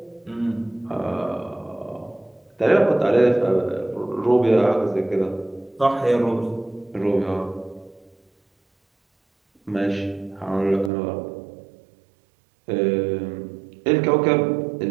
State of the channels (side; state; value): left; drops out; at 10.9 s